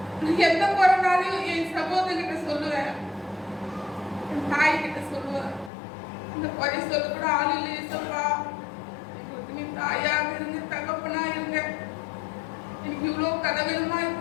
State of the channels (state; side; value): drops out; right; at 5.7 s